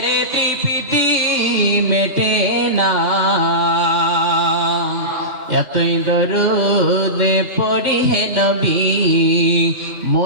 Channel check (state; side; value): late; left; 2.1 ms